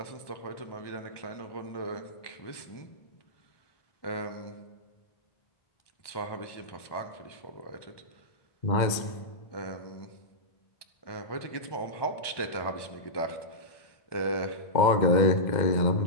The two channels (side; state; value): right; late; 2.0 ms